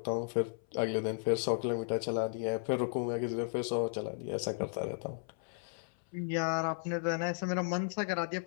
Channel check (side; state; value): right; silent; 55 dB below the other